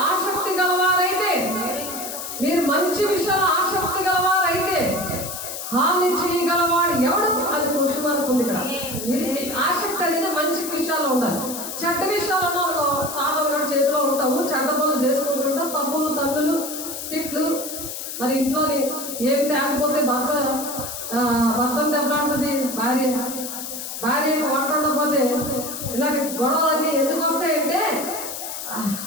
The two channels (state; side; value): noise; left; hiss, 7 dB below the sound